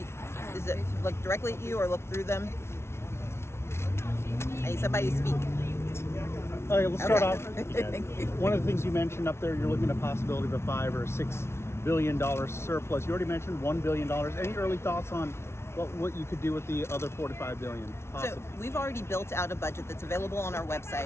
Does it look directly at you or look through them? I need somebody to speak. Okay, let's start off. Thank you. One of the things you mentioned up there, you're looking at a possibility of a $5 or $6 billion surplus. You already mentioned $1 billion. Any early thoughts on what you could do with the other $4 to $5 billion? So we've already built out a budget that's available on our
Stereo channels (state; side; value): late; right; 0.12 ms